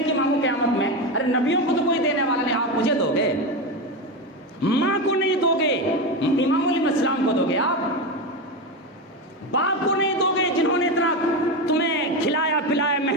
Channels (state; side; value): normal; both; correlation 0.16